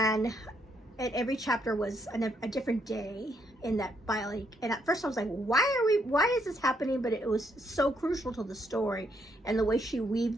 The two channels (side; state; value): both; normal; correlation 0.74